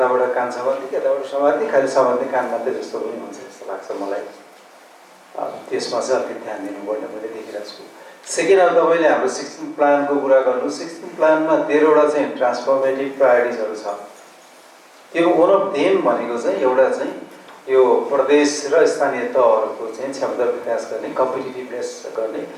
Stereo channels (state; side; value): identical; both; correlation 1.00